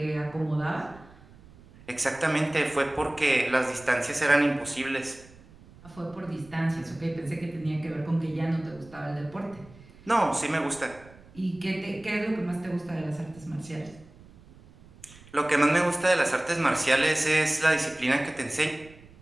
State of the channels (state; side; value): noise; right; rumble, 23 dB below the sound